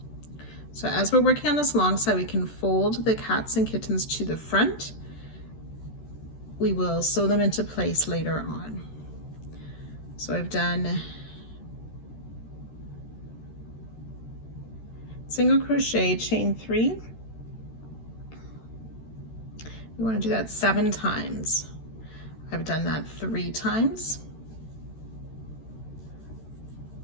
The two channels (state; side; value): late; right; 13 ms